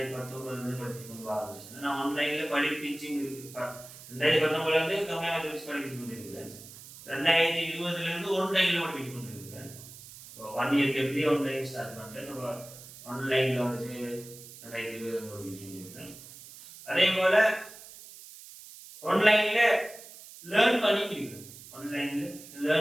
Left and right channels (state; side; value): noise; right; hiss, 17 dB below the sound